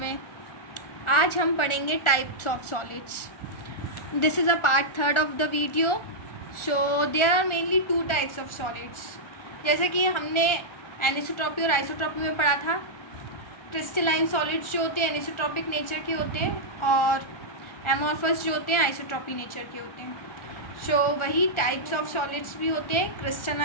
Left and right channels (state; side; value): late; right; 1.4 ms